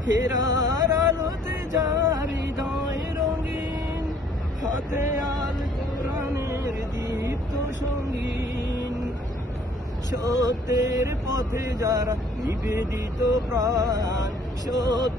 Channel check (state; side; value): normal; both; correlation 0.59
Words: ফেরার আলোতে যার হৃদয় রঙিন, হাতে আল কোরআনের দীপ্ত সঙ্গীন। সত্যের পথে যারা নিবেদিত প্রাণ,